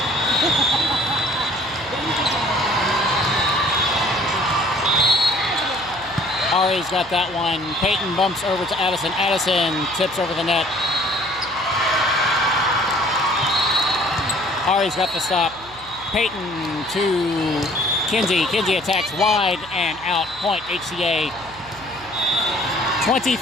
Ari's got that one. Peyton bumps over to Addison. Addison tips over the net. Ari's got the stop. Peyton to Kinsey. Kinsey attacks wide and out. Point HCA.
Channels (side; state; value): right; noise; hum, 21 dB below the sound